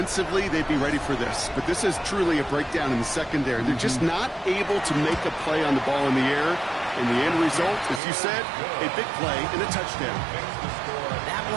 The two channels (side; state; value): left; drops out; at 8.0 s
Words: they'd be ready for this. But this is truly a breakdown in the secondary. They're just not able to make a play on the ball in the air. And the end result, as you said, a big play and a touchdown. That